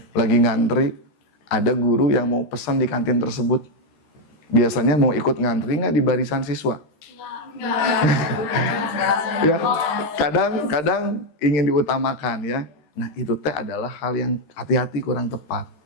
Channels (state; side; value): late; right; 13 ms